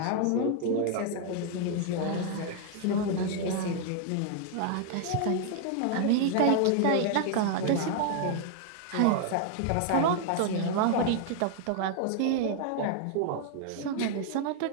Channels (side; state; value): both; different; correlation 0.00